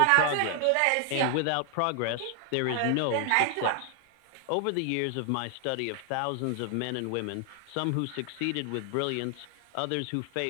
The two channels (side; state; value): both; different; correlation 0.00